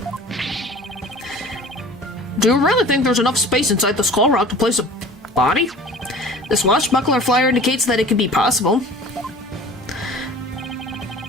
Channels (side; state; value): both; normal; correlation 0.43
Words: Do you really think there's enough space inside the skull rock to place a body? This swashbuckler flyer indicates that it could be possible.